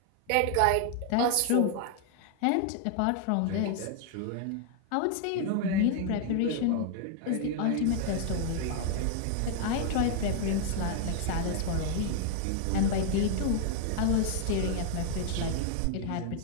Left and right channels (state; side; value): different; both; correlation 0.00